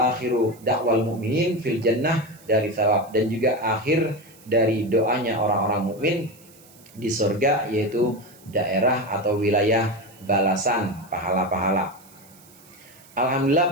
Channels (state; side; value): noise; right; hiss, 25 dB below the sound